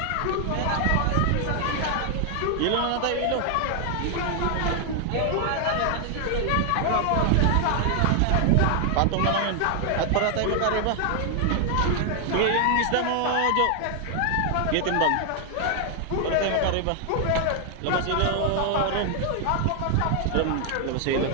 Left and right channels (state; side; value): different; both; correlation 0.00